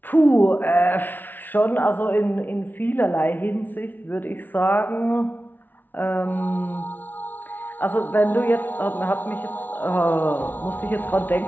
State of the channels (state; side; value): late; right; 0.089 ms